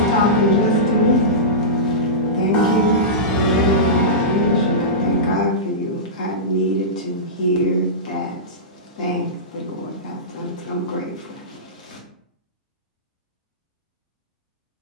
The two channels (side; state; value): both; normal; correlation -0.18